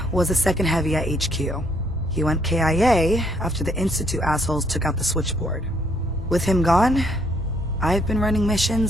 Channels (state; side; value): normal; both; correlation 0.68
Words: was the second heavy at HQ. He went KIA after the Institute assholes took out the switchboard. With him gone, I've been running